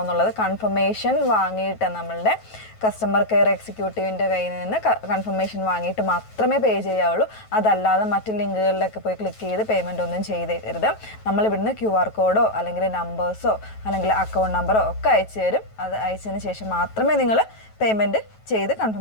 എന്നുള്ളത് കൺഫർമേഷൻ വാങ്ങിയിട്ട് നമ്മളുടെ കസ്റ്റമർ കെയർ എക്സിക്യൂട്ടീവിൻ്റെ കയ്യിൽ നിന്ന് കൺഫർമേഷൻ വാങ്ങിയിട്ട് മാത്രമേ പേ ചെയ്യാവുള്ളൂ. അതല്ലാതെ മറ്റ് ലിങ്കുകളിലൊക്കെ പോയി ക്ലിക്ക് ചെയ്ത് പേയ്മെൻ്റ് ഒന്നും ചെയ്തേക്കരുത്. നമ്മളിവിടുന്ന് QR കോഡോ അല്ലെങ്കിൽ നമ്പേഴ്സോ അല്ലെങ്കിൽ അക്കൗണ്ട് നമ്പറോ ഒക്കെ അയച്ചു തരും. അത് അയച്ചതിന് ശേഷം മാത്രമേ നിങ്ങൾ പേയ്മെൻറ്റ് ചെയ്ത്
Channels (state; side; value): late; right; 9.2 ms